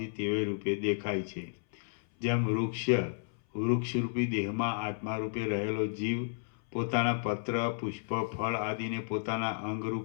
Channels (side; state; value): right; silent; 56 dB below the other